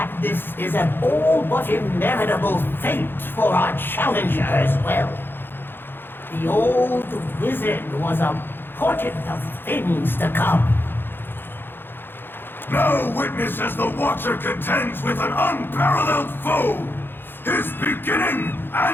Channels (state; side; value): late; right; 0.10 ms